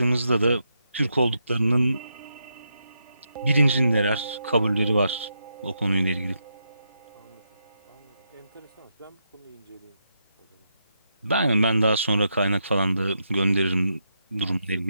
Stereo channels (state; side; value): inverted; both; correlation -0.82